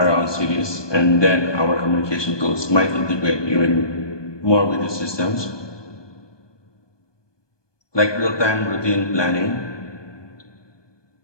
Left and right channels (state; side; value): late; right; 1.2 ms